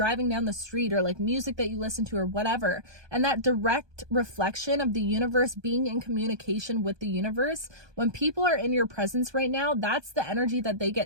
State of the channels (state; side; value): late; left; 1.2 ms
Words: down the street, or like music that you listen to or whatever. And that direct reflection of the universe being in communication with the universe, when people are in your presence right now, that's the energy that they